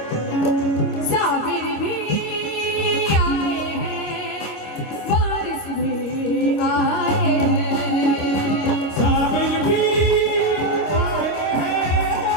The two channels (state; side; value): late; right; 25 ms